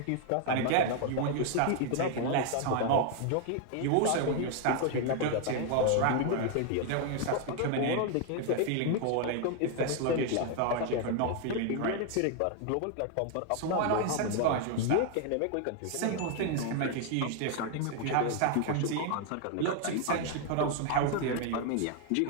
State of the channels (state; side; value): different; both; correlation 0.00